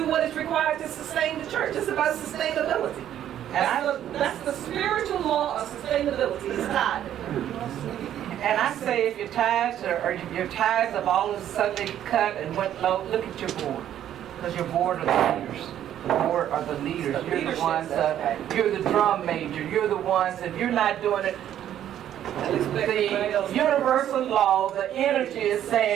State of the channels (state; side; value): quieter; left; 11.0 dB